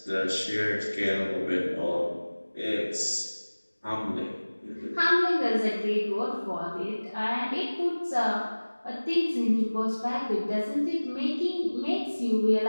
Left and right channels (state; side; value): inverted; both; correlation -1.00